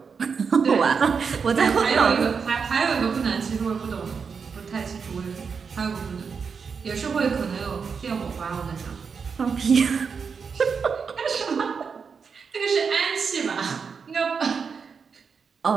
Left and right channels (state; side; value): quieter; left; 5.8 dB